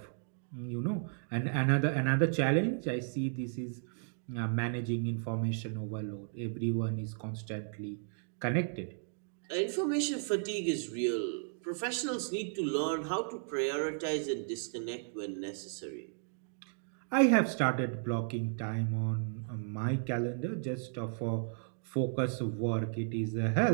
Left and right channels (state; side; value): silent; left; digital silence